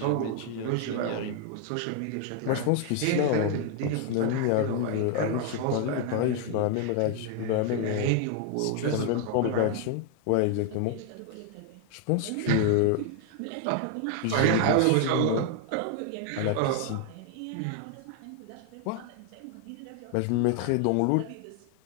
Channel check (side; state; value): both; different; correlation 0.00